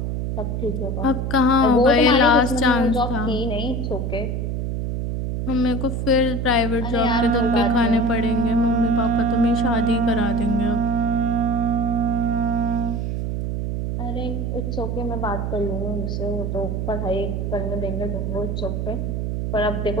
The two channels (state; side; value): noise; right; hum, 2 dB below the sound